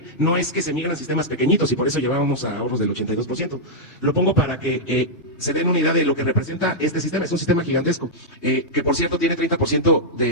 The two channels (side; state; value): right; late; 3.2 ms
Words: no es que se migran sistemas pequeñitos y por eso llevábamos a ahorros del 82%. Lo pongo para que se den una idea de lo que representa este sistema. Es un sistema gigantesco, que por cierto tiene 30%